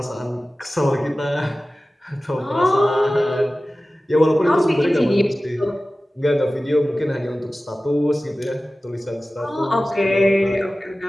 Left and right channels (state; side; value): normal; both; correlation 0.96